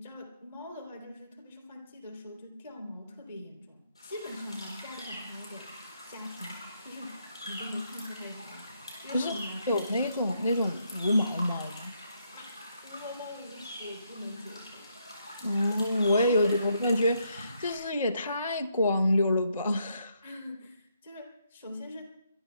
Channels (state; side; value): inverted; both; correlation -0.76